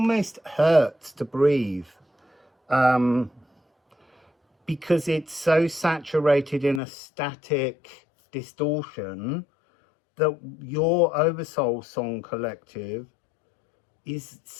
hurts to breathe. Because it's so saturated in a static distortion that your Oversoul Song Collective is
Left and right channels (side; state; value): right; drops out; at 6.8 s